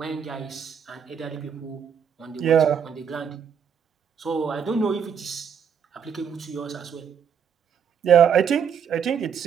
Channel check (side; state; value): left; quieter; 7.5 dB